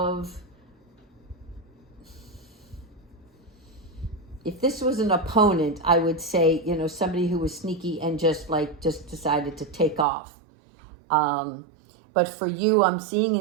if this was an opponent, I would say, somebody who was sneaky and just decided to take off. But for you, I'm seeing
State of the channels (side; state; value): left; drops out; at 10.1 s